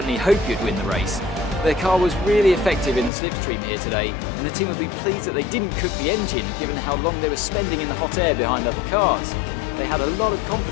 hope you'd win the race. Their car was really effective in the slipstream here today, and the team would be pleased that they didn't cook the engine, given how long they were spending in the hot air behind other cars. They had a lot of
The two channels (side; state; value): right; drops out; at 3.1 s